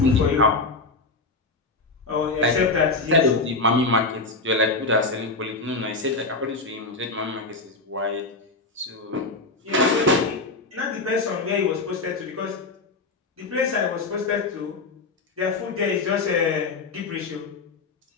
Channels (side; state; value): right; quieter; 3.6 dB